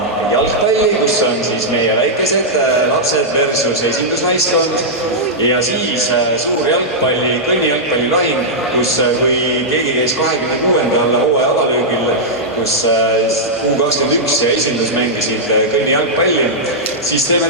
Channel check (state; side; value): normal; both; correlation -0.08